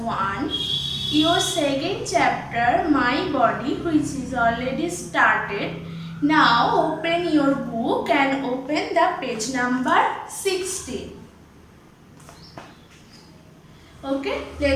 Your second chapter, My Body, which is already started. Now open your book and open the page number 60. Okay,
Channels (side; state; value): both; identical; correlation 1.00